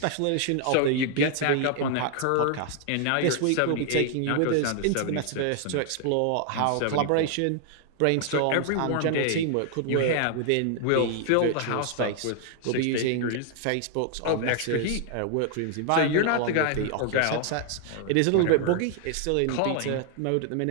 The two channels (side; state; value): both; different; correlation 0.00